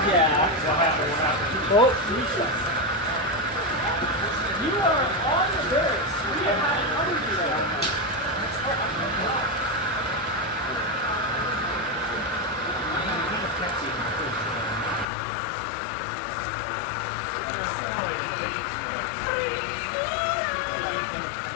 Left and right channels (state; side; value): drops out; right; at 15.1 s